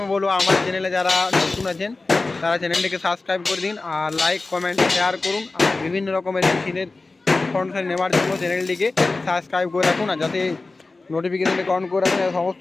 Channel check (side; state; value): right; quieter; 3.5 dB